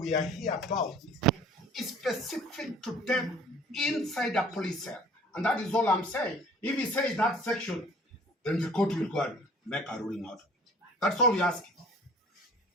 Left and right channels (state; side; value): normal; both; correlation 0.50